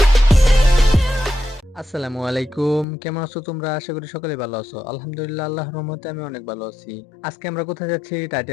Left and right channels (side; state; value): right; drops out; at 2.9 s